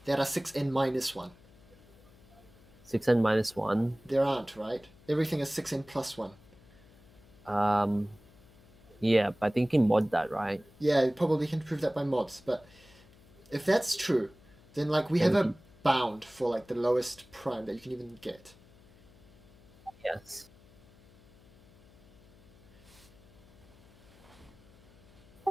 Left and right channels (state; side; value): noise; left; hum, 26 dB below the sound